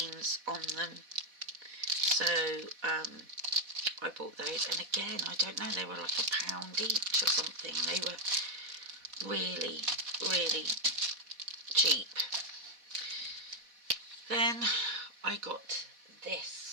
on them. So I bought those, and again, I don't know, they were like £1 each or something. They were really, really cheap. Then I got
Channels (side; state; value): left; late; 4.1 ms